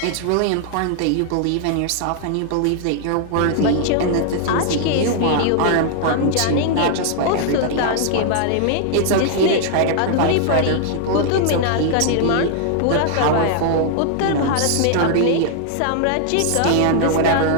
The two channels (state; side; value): different; both; correlation 0.00